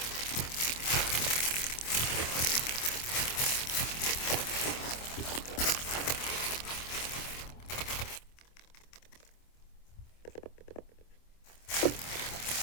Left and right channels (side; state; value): right; late; 25 ms